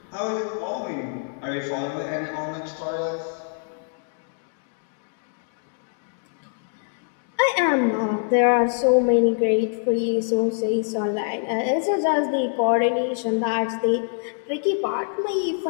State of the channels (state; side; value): silent; right; digital silence